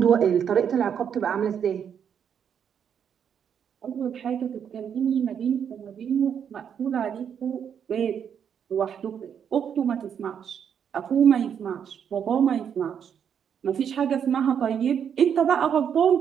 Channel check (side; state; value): left; quieter; 8.1 dB